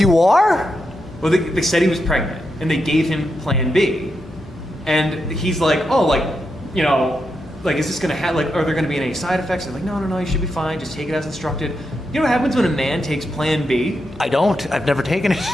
are? Well, they said he was pregnant, and they gave him Plan B, and he's like, is this gonna have are there gonna be any side effects? They're like, no, you should be fine. Just take it as instructed. You know what happens when a man takes Plan B? I don't. I've never taken it.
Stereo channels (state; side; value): normal; both; correlation 0.85